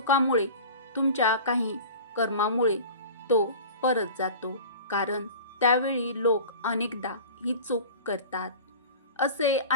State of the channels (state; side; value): inverted; both; correlation -0.38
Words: तुमच्या काही कर्मामुळे तो परत जातो, कारण त्यावेळी लोक अनेकदा ही चूक करतात। असे